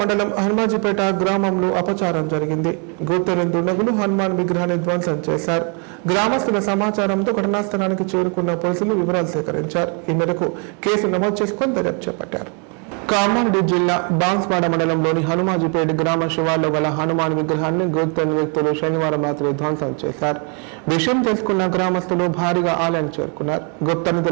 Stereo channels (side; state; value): left; quieter; 37.0 dB